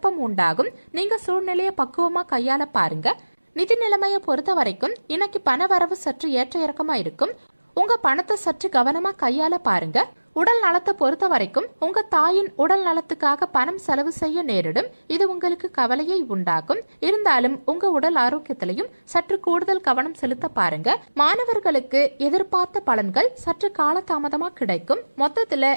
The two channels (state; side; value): inverted; both; correlation -1.00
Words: உண்டாகும். நீங்க சூழ்நிலையை பக்குவமா கையாள பாருங்க. நிதி நிலைமையை பொறுத்த வரைக்கும் இன்னைக்கு பண வரவு சற்று ஏற்ற இறக்கமா இருக்கும். உங்க பணத்தை சற்று கவனமா கையாள பாருங்க. உடல் நலத்தை பொறுத்த வரைக்கும் உங்க தாயின் உடல் நலத்துக்காக பணம் செலவு செய்ய நேரிடும். இது உங்களுக்கு கவலையை உண்டாக்கும். இருந்தாலும் உங்க உடல் ஆரோக்கியத்திலையும் சற்று கூடுதல் கவனம் செலுத்த பாருங்க. மாணவர்களுக்கு எதிர்பார்த்த பலன்கள் சற்று காலதாமதமா கிடைக்கும். மொத்தத்துல